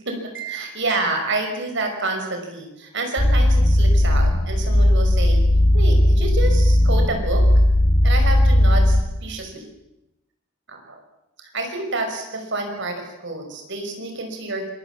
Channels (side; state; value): both; normal; correlation 0.84